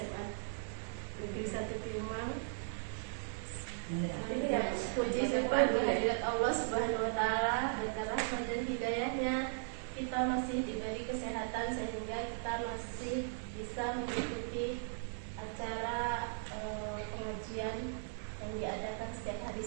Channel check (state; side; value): silent; left; 53 dB below the other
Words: Negeri 1 Piumang. Puji syukur kehadirat Allah Subhanahu wa Ta'ala, berkat rahmat dan hidayahnya kita masih diberi kesehatan sehingga kita masih bisa mengikuti acara pengajian yang diadakan setiap hari